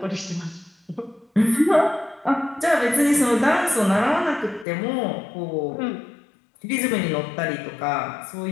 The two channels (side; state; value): right; drops out; at 4.7 s